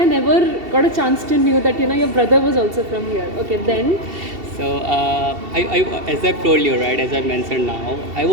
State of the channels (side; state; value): left; late; 2.7 ms